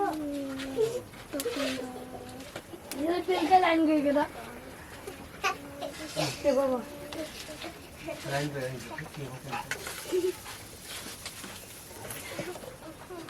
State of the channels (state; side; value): identical; both; correlation 1.00